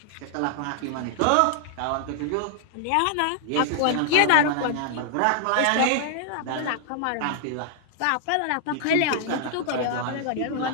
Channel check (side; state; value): both; different; correlation 0.00